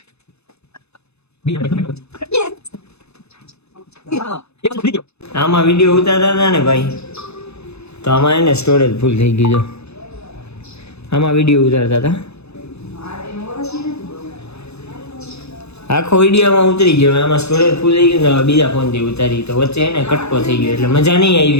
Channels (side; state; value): right; late; 0.80 ms